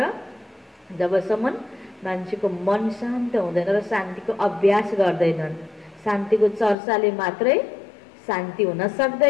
जबसम्म मान्छेको मन शान्त हुँदैन र शान्तिको अभ्यास गर्दैनन्, शान्तिको चर्चाले मात्रै शान्ति हुन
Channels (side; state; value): right; drops out; at 6.8 s